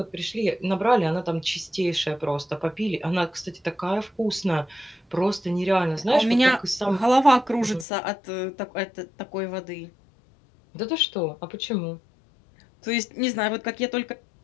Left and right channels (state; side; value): drops out; right; at 7.9 s